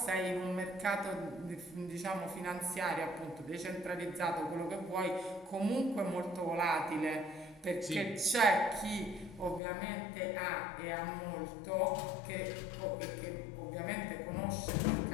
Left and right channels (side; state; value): right; drops out; at 9.6 s